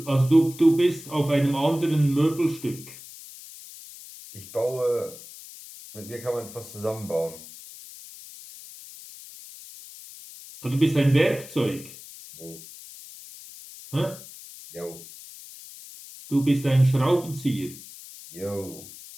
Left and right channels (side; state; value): left; noise; hiss, 16 dB below the sound